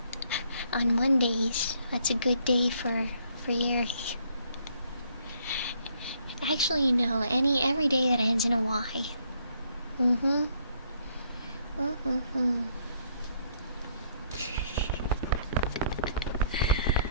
On Mondays. That's a good day for Yuri. Actually, no. Every day that ends in a Y.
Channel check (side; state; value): both; inverted; correlation -0.67